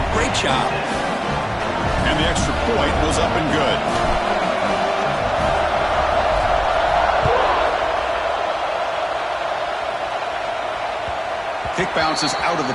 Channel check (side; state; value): both; identical; correlation 1.00